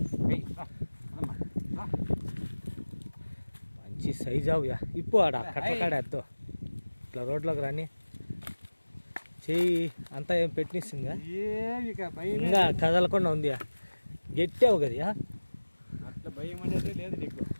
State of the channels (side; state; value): both; inverted; correlation -1.00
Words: మంచి సైజు అవుయా ఇప్పు ఆడ కట్టల కాడ ఎత్తో ఇట్లా రోడ్లోకి రాని చెయ్యి అంతా ఏం పెట్టినిస్తుందా ఇంకా కదలకుండా ఉంది గట్టావు కదా అట్లా భయం అనేది లేదు నీకు